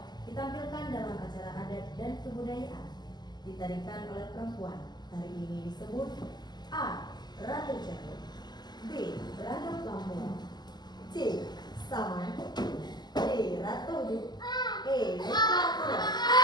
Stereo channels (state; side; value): late; right; 0.21 ms